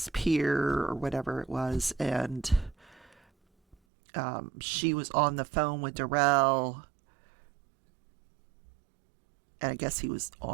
pier or whatever it was. And she was on the phone with Darrell, and I guess he was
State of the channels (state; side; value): drops out; left; at 3.8 s